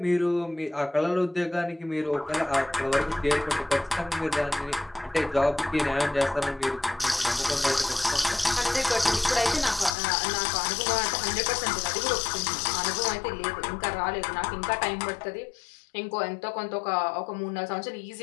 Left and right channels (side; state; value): right; drops out; at 10.0 s